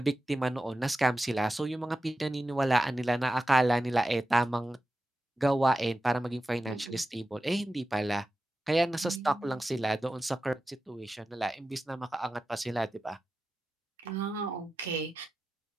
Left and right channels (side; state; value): both; normal; correlation 0.92